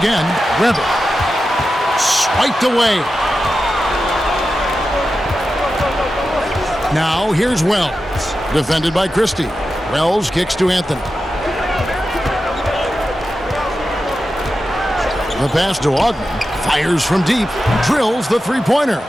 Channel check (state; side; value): normal; both; correlation 0.91